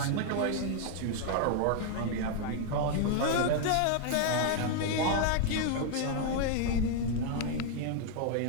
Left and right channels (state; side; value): different; both; correlation 0.00